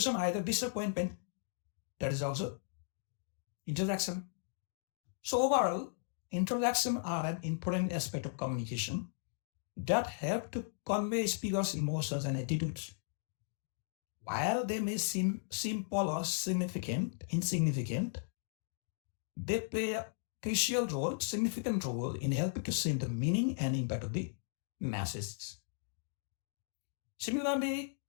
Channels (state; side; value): silent; right; digital silence